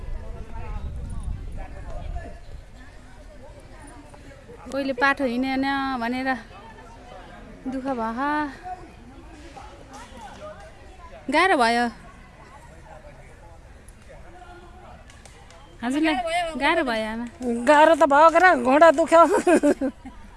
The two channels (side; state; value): both; identical; correlation 1.00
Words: कोहीले बाटो हिँडेन भनेर दुःख भयो गाह्रो भयो हजुरलाई गाह्रो भयो आमा गाह्रो त भयो के घोडा दुख्यो